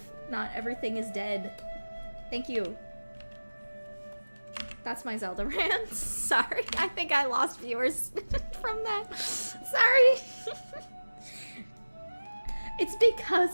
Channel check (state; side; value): inverted; both; correlation -1.00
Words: Not everything is dead. Thank you. That's my Zelda rant. Sorry, I think I lost viewers from that. Sorry. It's